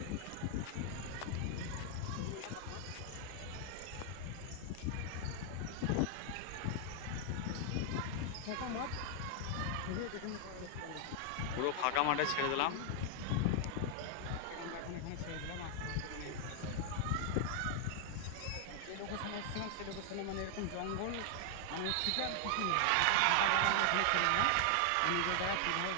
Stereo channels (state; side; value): different; both; correlation 0.00